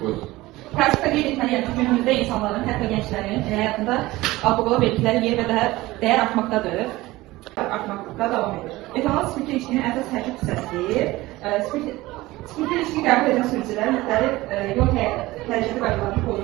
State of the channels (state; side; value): quieter; left; 18.8 dB